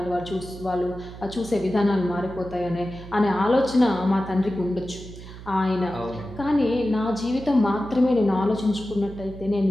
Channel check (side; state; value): right; noise; hum, 14 dB below the sound